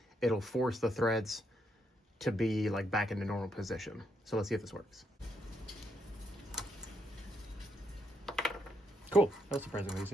it'll force the threads to be like back into normal position. So let's see if this works. Cool, that was surprisingly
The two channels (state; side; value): normal; both; correlation 0.77